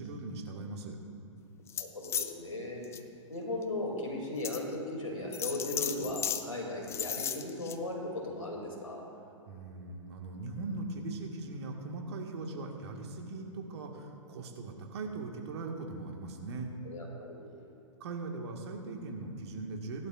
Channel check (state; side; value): normal; both; correlation -0.18